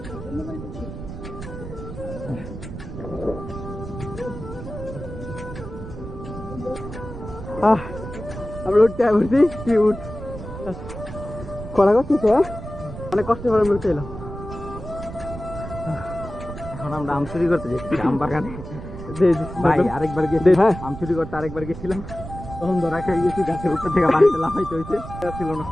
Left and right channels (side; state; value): right; noise; rumble, 10 dB below the sound